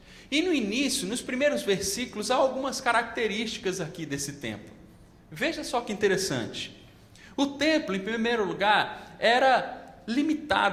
E no início, nos primeiros versículos, há algumas características aqui desse templo. Veja só que interessante. O templo, em primeiro lugar, era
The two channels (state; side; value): identical; both; correlation 1.00